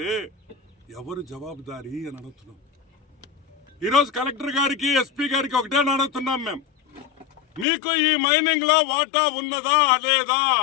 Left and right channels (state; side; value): drops out; right; at 7.7 s